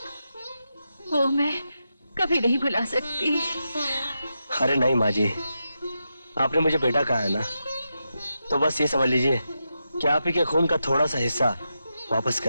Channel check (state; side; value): inverted; both; correlation -0.87